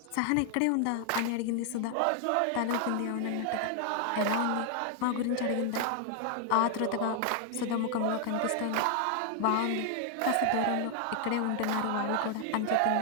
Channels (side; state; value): both; different; correlation 0.00